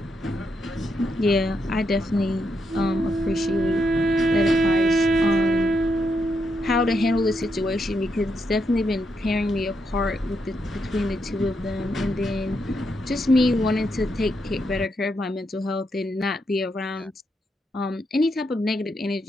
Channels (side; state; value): both; normal; correlation 0.81